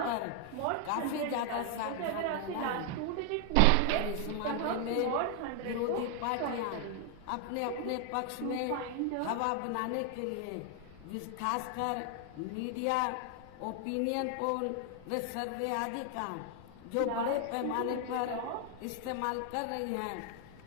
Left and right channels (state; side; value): different; both; correlation 0.00